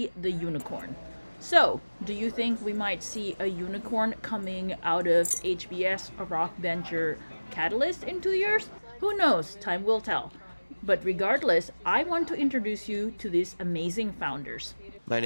the unicorn. So, do you think we might see a unicorn coming out of HBS Rock Venture Catalyst in 2 years? Who knows? Time will tell. But regardless, I want to introduce you to these amazing founders. My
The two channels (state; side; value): inverted; both; correlation -1.00